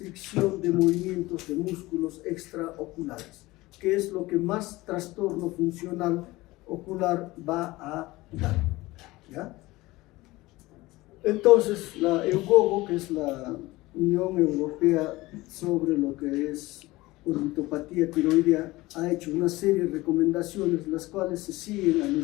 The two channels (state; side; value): quieter; right; 19.8 dB